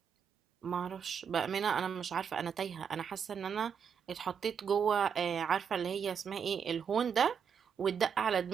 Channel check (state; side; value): quieter; left; 7.1 dB